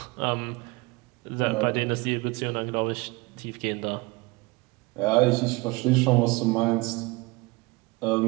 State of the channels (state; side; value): quieter; left; 24.6 dB